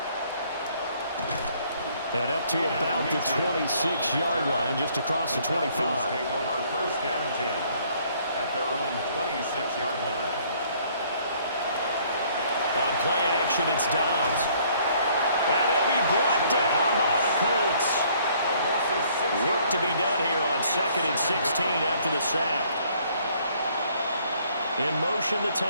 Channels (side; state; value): both; inverted; correlation -0.62